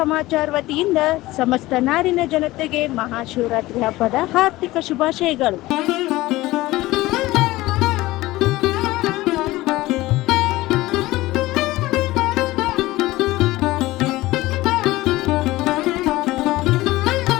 ವತಿಯಿಂದ ಸಮಸ್ತ ನಾಡಿನ ಜನತೆಗೆ ಮಹಾಶಿವರಾತ್ರಿ ಹಬ್ಬದ ಹಾರ್ದಿಕ ಶುಭಾಶಯಗಳು.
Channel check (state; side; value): quieter; right; 18.3 dB